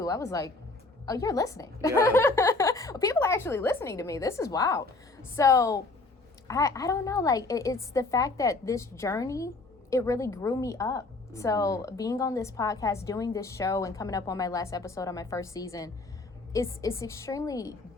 I was like, oh, you're listening. People are actually listening to me. This is wild. So I don't know, like it's the fact that this journey, it really grew me up. So being on this podcast, doing this show, and coming up on my last episode on my first season, it's extremely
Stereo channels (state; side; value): quieter; right; 3.4 dB